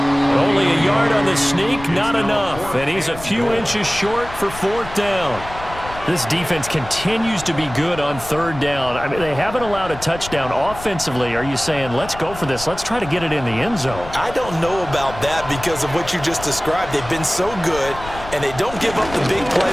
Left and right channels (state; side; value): noise; left; rumble, 13 dB below the sound